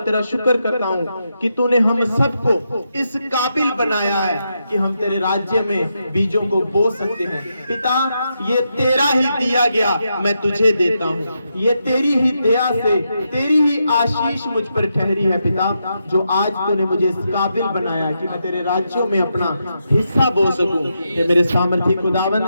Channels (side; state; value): both; inverted; correlation -0.84